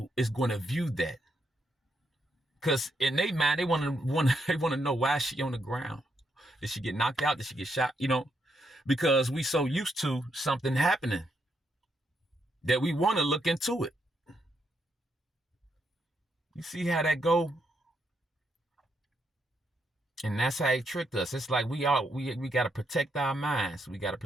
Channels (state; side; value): normal; both; correlation 0.79